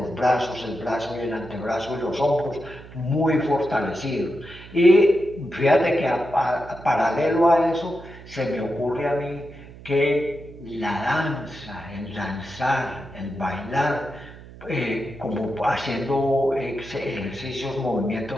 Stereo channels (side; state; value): right; noise; hum, 18 dB below the sound